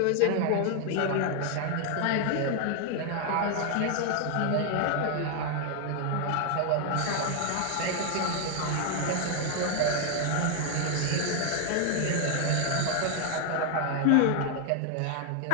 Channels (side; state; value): both; different; correlation 0.00